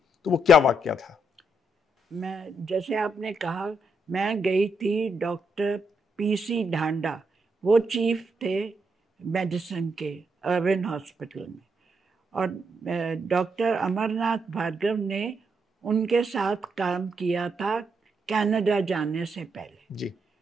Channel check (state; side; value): normal; both; correlation 0.79